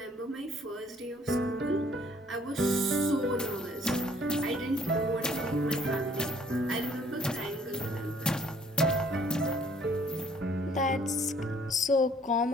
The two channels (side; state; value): both; normal; correlation 0.60